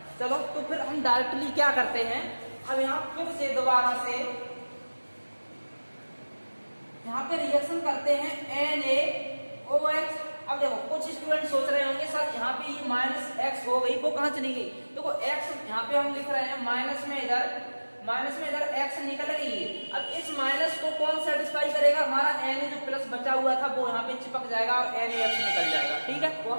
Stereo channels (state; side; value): inverted; both; correlation -1.00